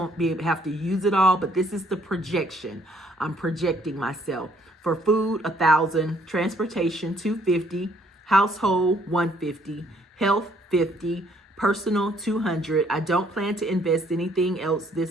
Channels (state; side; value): normal; both; correlation 0.65